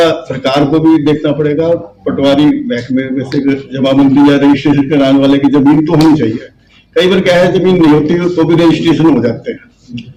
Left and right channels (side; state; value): both; identical; correlation 1.00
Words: सरकार को भी देखना पड़ेगा। पटवारी महकमे में से जमाबंदी या रजिस्ट्रेशन कराने वाले की जमीन तो होनी चाहिए। कई बार क्या है, जमीन नहीं होती तो भी रजिस्ट्रेशन हो जाते हैं।